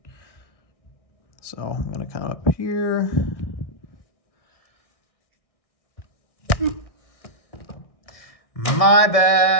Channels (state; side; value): late; right; 1.6 ms